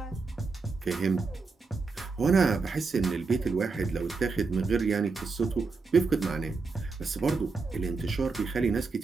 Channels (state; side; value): quieter; left; 4.3 dB